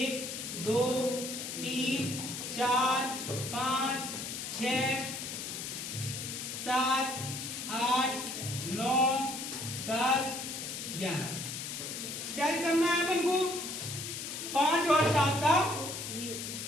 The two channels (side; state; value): left; noise; hiss, 6 dB below the sound